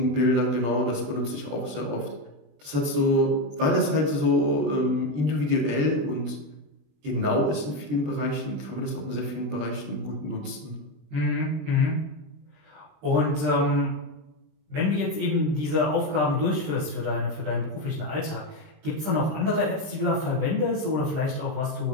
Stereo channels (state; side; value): late; left; 20 ms